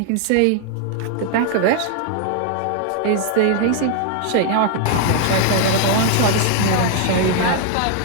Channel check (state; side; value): different; both; correlation 0.00